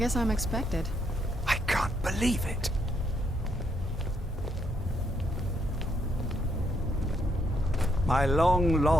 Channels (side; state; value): both; normal; correlation 0.75